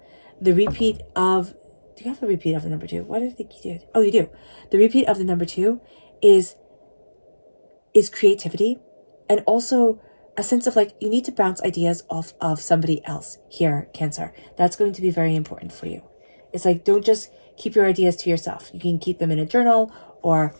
The repeat of, do you have a repeat of the number 2? What did I think you did? Oh, you do. The repeat of the number 2 is creativity, and also a sense of like, you need to bounce ideas off of somebody else here, Cancer. That's going to be very important for you. It's like, don't just keep your ideas to yourself. You can keep them in a journal, or,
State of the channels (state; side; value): inverted; both; correlation -1.00